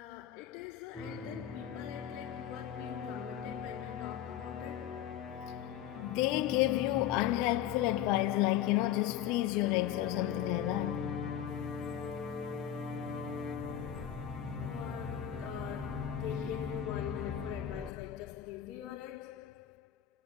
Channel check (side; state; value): right; quieter; 11.0 dB